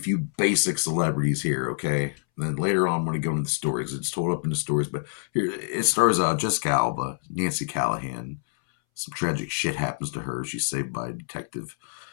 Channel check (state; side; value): silent; right; 61 dB below the other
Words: few basic celebrities here, okay? And then later on, I'm going to go into the stories. It's told up into stories. But here, it stars Jessica Alba, Nancy Callahan. Some tragic shit happens to her. She's saved by Detective